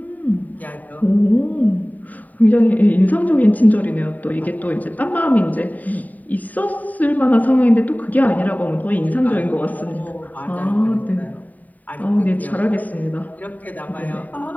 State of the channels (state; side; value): late; right; 0.078 ms